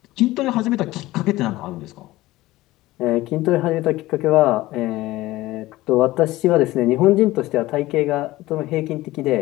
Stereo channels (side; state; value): right; quieter; 17.8 dB